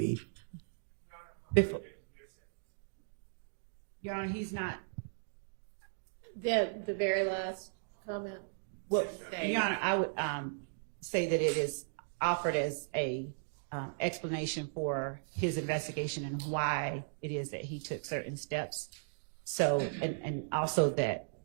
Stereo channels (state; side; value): silent; left; digital silence